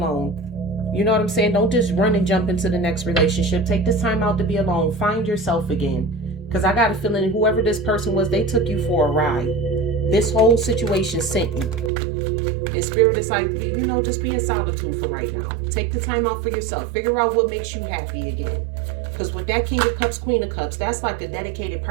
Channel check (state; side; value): drops out; left; at 11.9 s